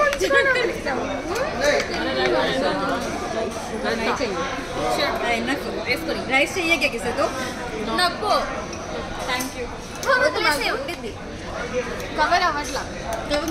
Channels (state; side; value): identical; both; correlation 1.00